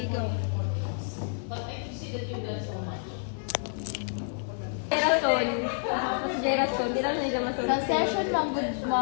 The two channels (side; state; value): right; silent; 59 dB below the other